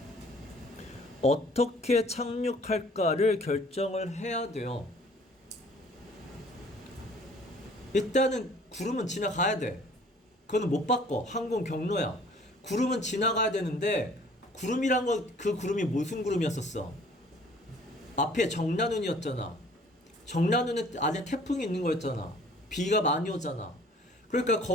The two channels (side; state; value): both; normal; correlation 0.54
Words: 어떻게 착륙할까를 결정을 해야 돼요. 일단은 구름은 지나가야 돼. 그거는 못 바꿔. 항공 경로야. 구름은 지나가야 되는데 구름이란 거 그 구름이 무슨 구름이었었어? 앞에 정난운이었잖아. 정난운에 안에 태풍이 있는 거였잖아. 비가 많이 오잖아. 그러니까